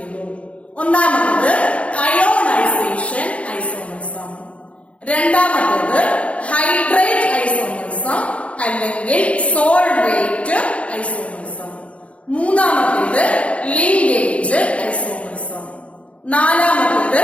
ഒന്നാമത്തേത് അയോണൈസേഷൻ ഐസോമറിസം, രണ്ടാമത്തേത് ഹൈഡ്രേറ്റ് ഐസോമറിസം അല്ലെങ്കിൽ സോൾവേറ്റ് ഐസോമറിസം, മൂന്നാമത്തേത് linkage isomerism, നാലാമത്തേത്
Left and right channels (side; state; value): right; late; 0.063 ms